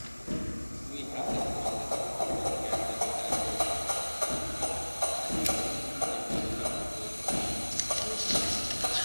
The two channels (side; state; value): both; inverted; correlation -1.00